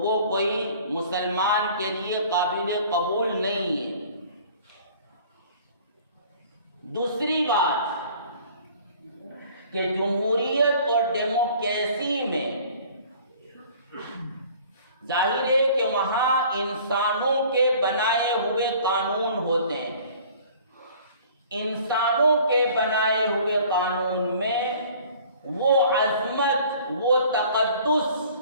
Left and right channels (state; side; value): inverted; both; correlation -0.50